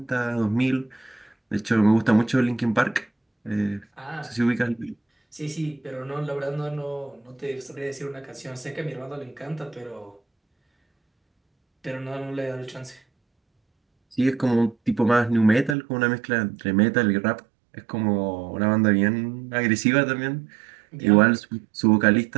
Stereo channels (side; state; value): left; drops out; at 15.8 s